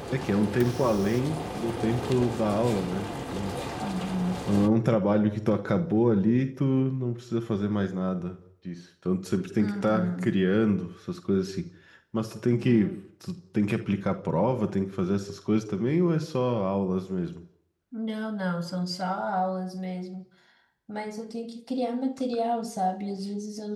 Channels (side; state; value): both; identical; correlation 1.00